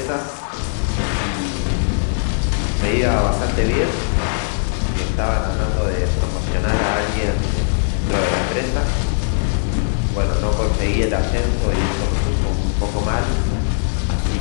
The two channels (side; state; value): right; silent; 58 dB below the other